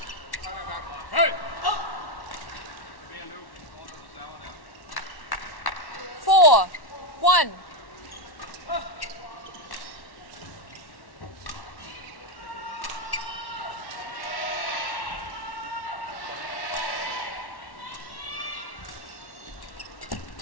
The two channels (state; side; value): late; right; 1.1 ms